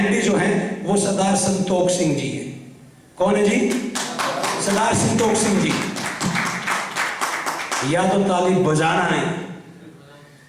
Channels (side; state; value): both; identical; correlation 1.00